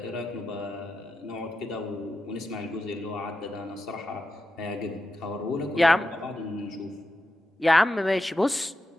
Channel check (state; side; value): normal; both; correlation 0.88